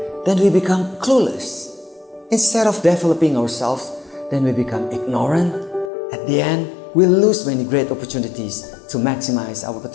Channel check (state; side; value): drops out; right; at 5.9 s